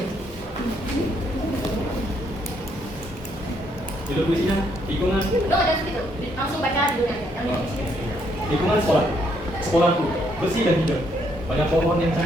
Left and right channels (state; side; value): normal; both; correlation 0.72